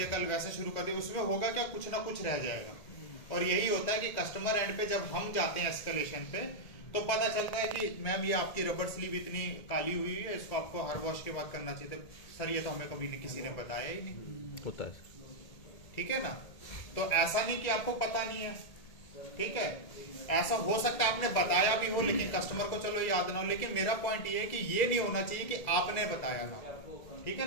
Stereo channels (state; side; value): late; right; 1.8 ms